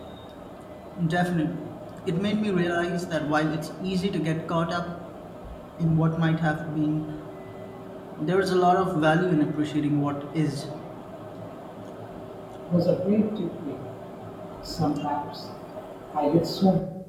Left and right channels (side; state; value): both; identical; correlation 1.00